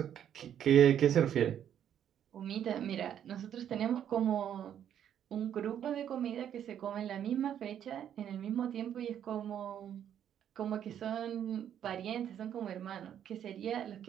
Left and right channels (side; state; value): left; quieter; 9.7 dB